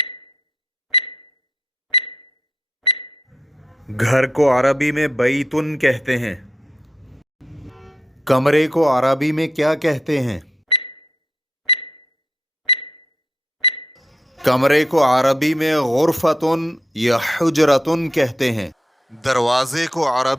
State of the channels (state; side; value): normal; both; correlation 0.80